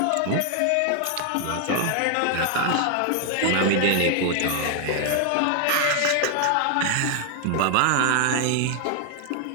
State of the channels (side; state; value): both; different; correlation 0.00